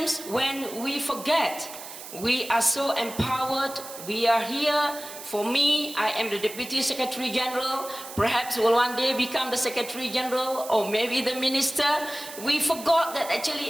when we forget, we are so empowered, we are here. For me, I am the Deputy Secretary General, perhaps will one day become the Secretary General or maybe the Minister. We forgot that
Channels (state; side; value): noise; right; hiss, 13 dB below the sound